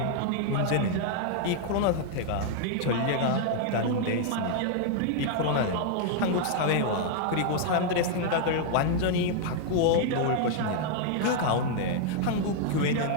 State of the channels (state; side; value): different; both; correlation -0.01